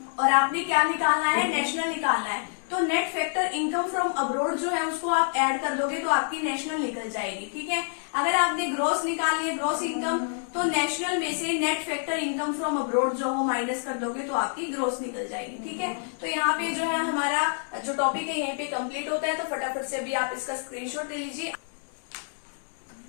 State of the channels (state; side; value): silent; right; 57 dB below the other